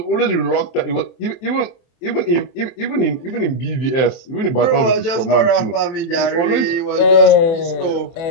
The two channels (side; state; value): right; late; 23 ms